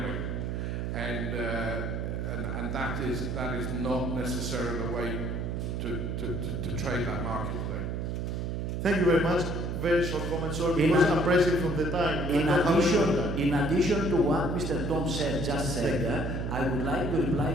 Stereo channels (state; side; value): noise; right; hum, 2 dB below the sound